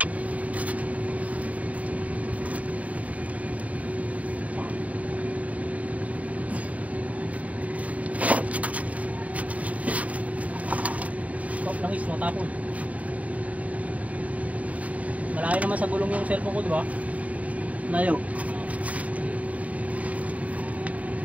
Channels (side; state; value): left; late; 0.069 ms